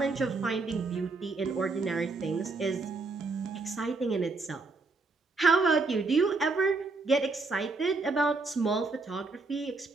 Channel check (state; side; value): quieter; left; 3.7 dB